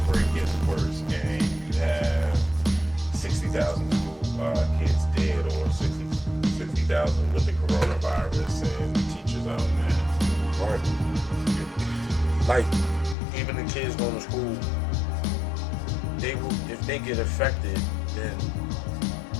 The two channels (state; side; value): drops out; right; at 13.2 s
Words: gets worse and you have 60,000 kids dead or 60,000 with the coronavirus and teachers out there? Right. Like, even the kids going to school, they will, if they get affected, then